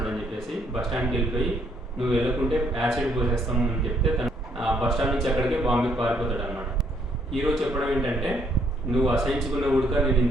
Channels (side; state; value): both; normal; correlation 0.69